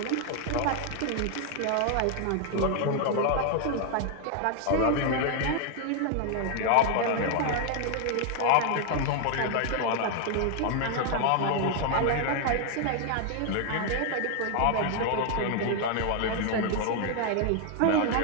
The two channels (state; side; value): different; both; correlation 0.00